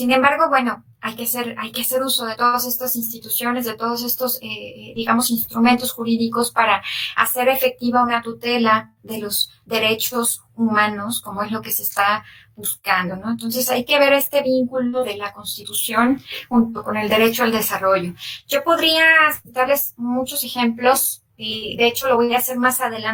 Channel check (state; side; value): identical; both; correlation 1.00